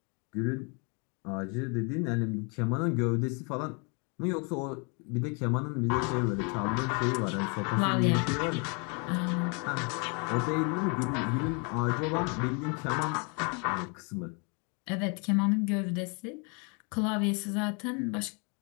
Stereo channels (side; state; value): right; quieter; 34.7 dB